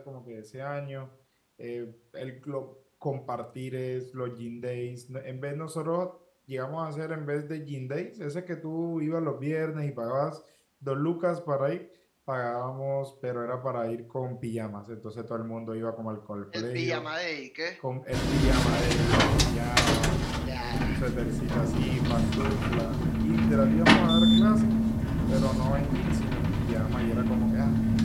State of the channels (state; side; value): identical; both; correlation 1.00